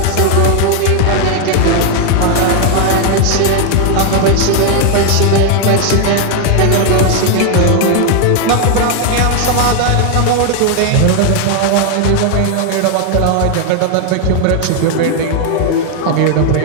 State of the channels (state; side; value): different; both; correlation 0.00